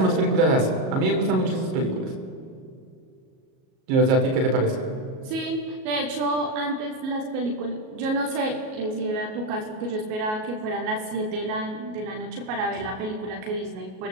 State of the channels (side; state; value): left; late; 37 ms